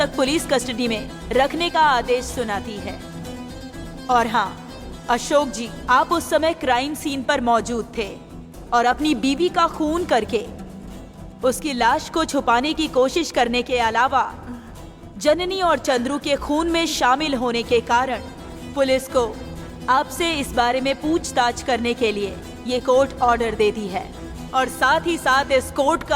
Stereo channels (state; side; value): identical; both; correlation 1.00